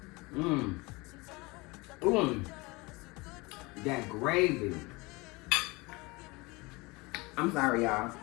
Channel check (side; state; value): right; quieter; 24.7 dB